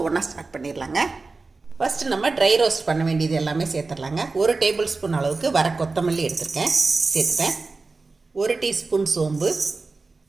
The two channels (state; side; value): quieter; left; 3.9 dB